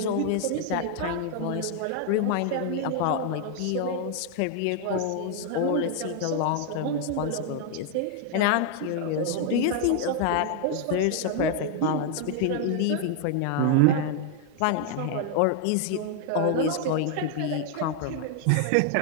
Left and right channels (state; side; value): different; both; correlation 0.00